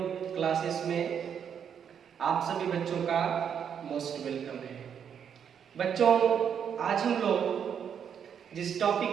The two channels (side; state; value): left; quieter; 8.0 dB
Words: क्लासेस में आप सभी बच्चों का मोस्ट वेलकम है। बच्चों, आज हम लोग जिस टॉपिक